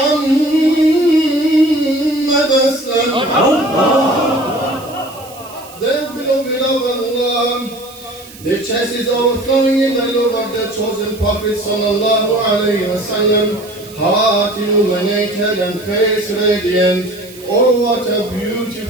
Aslam. The beloved of Allah, their chest is overflowing in the love of the chosen Prophet sallallahu alayhi wa sallam, heart illuminated and face radiant. Oh, what a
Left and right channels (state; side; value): noise; right; hiss, 20 dB below the sound